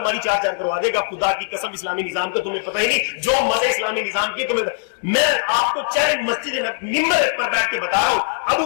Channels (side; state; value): right; silent; digital silence